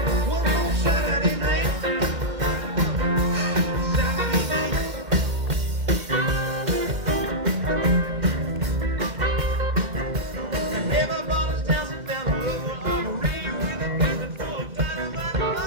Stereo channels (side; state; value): left; late; 2.1 ms